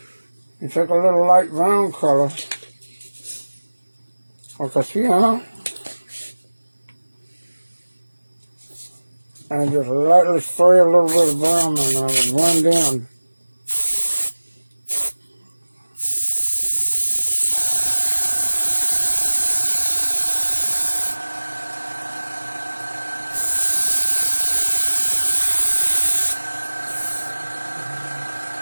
You take a little light brown color, like a sienna, and just lightly spray a little bit of brown in there to blend in.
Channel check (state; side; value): inverted; both; correlation -1.00